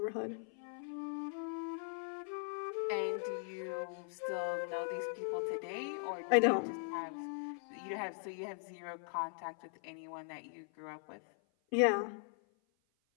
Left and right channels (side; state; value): right; silent; 51 dB below the other